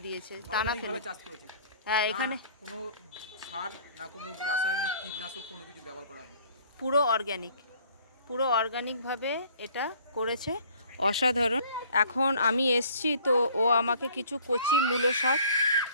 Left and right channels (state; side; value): inverted; both; correlation -0.54